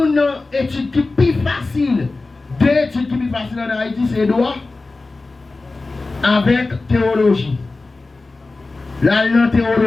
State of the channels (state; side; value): quieter; right; 3.5 dB